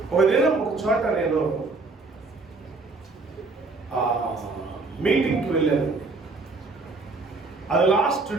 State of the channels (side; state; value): left; quieter; 3.7 dB